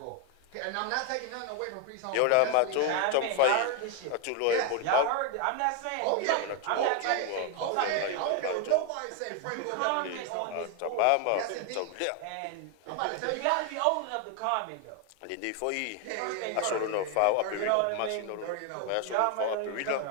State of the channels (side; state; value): both; different; correlation 0.01